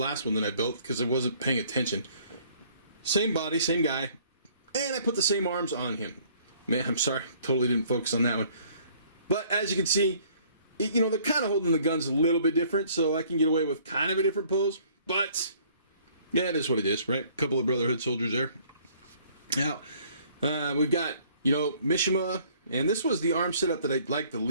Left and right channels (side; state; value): both; inverted; correlation -0.59